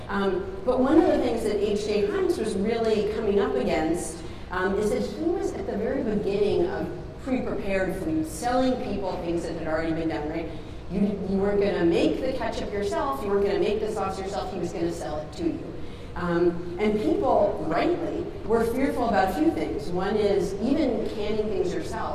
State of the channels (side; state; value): both; identical; correlation 1.00